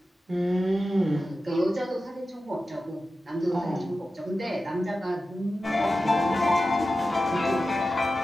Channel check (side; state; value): both; normal; correlation 0.93